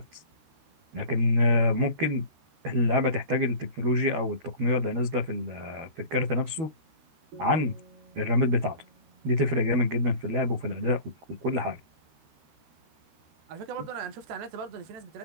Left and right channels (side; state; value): left; late; 13 ms